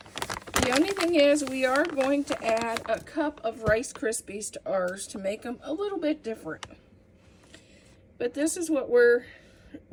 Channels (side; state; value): both; identical; correlation 1.00